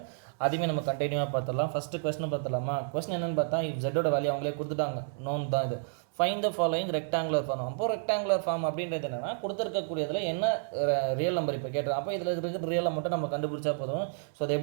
அதுவுமே நம்ம கண்டினியூவாக பார்த்துடலாம். ஃபஸ்ட்டு கொஸ்டின் பார்த்துடலாமா? கொஸ்டின் என்னென்னு பார்த்தா ஜெட்டோட வேல்யூ அவங்களே கொடுத்துட்டாங்க. நோன் தான் இது. Find the following rectangular form. அப்போ ரெக்டாங்குலர் ஃபார்ம் அப்படின்றது என்னென்னா கொடுத்துருக்கக்கூடியதில் என்ன ரியல் நம்பர் இப்போ கேட்டுருக்கோம். அப்போ இதில் இருக்கிற ரியலை மட்டும் நம்ம கண்டுபிடிச்சா போதும். ஸோ அது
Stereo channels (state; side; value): silent; left; digital silence